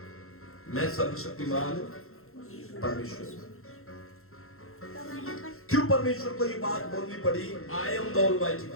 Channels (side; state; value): right; late; 0.62 ms